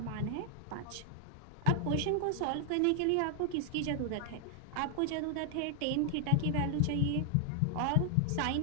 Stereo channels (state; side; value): different; both; correlation 0.00